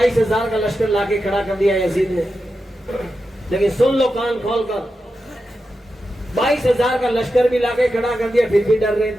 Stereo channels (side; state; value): both; normal; correlation 0.90